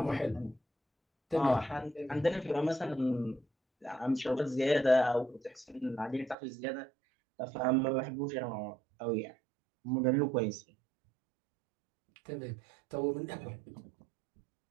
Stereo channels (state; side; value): drops out; left; at 6.4 s